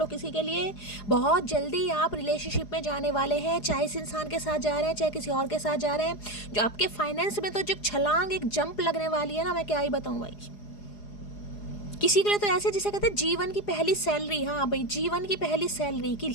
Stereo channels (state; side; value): late; right; 4.8 ms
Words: किसी के लिए। बहुत जल्दी आप रिलेशनशिप में जाने वाले हैं, चाहे इस इंसान के साथ जा रहे हैं, चाहे किसी और के साथ जा रहे हैं। जो आपके फाइनेंस में तो जो छलांग, एक जंप लगने वाली है ना, मैं क्या ही बताऊँ भाई। किसी के लिए तो ऐसे जिसे कहते हैं जीवन की पहली सैलरी। हाँ भाई, जीवन की पहली सैलरी कि